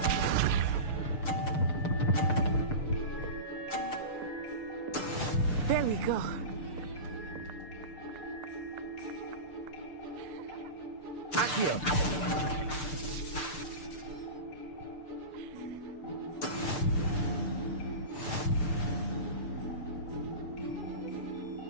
There we go. Accio.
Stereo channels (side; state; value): right; late; 6.7 ms